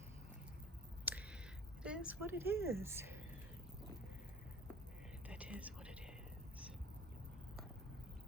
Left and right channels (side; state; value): both; normal; correlation 0.45